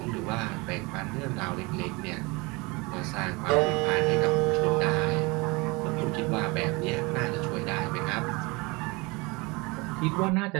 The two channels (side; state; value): left; quieter; 26.1 dB